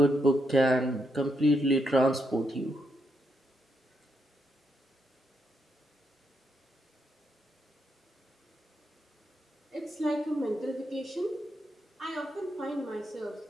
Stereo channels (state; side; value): normal; both; correlation 0.80